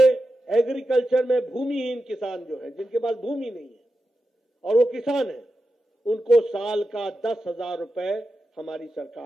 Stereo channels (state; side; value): normal; both; correlation 0.90